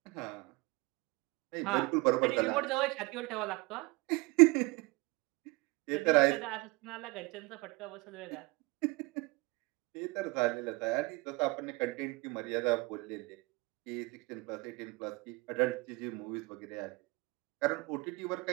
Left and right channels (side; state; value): left; quieter; 25.5 dB